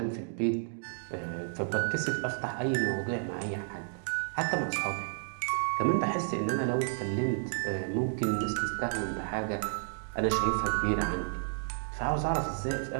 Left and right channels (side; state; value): left; silent; digital silence